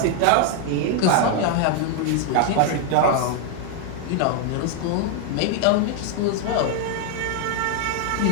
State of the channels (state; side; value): different; both; correlation 0.00